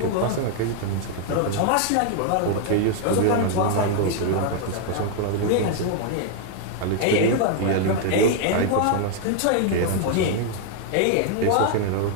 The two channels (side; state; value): both; different; correlation 0.00